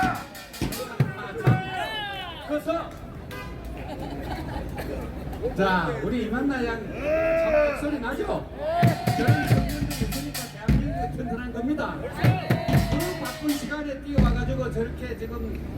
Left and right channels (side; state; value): both; identical; correlation 1.00